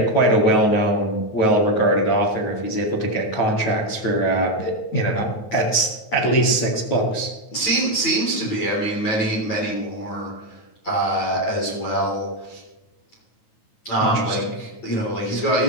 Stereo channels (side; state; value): right; late; 9.3 ms